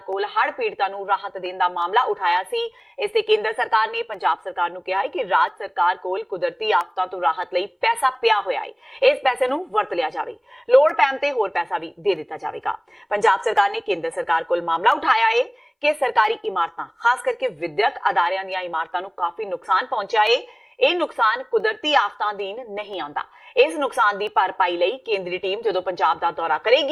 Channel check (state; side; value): identical; both; correlation 1.00